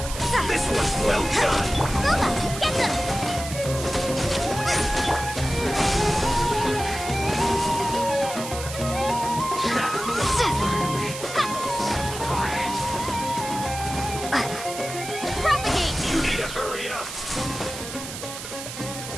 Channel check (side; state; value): right; noise; hiss, 9 dB below the sound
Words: This one's well done! Luma, get them! Propagate! You need to hurry up!